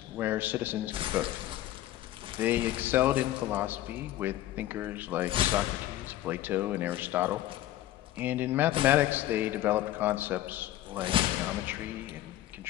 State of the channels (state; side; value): quieter; right; 14.3 dB